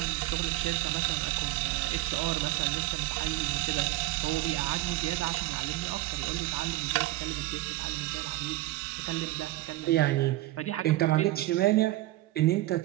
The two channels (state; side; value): quieter; left; 17.2 dB